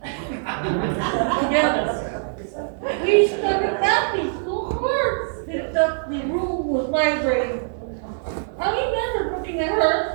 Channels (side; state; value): left; silent; digital silence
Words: together. We started laughing so hard that the room was vibrating. I remember looking at